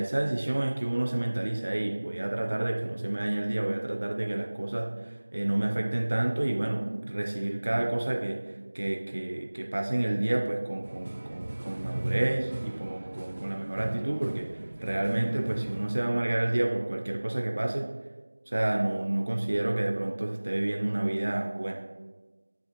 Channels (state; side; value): inverted; both; correlation -1.00